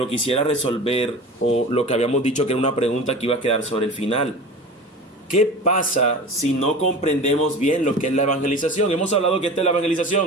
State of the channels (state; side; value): normal; both; correlation 0.34